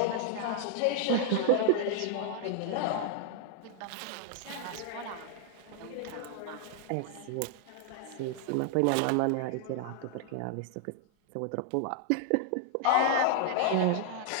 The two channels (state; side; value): different; both; correlation 0.00